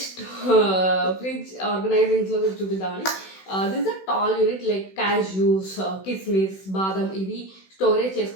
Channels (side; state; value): right; late; 16 ms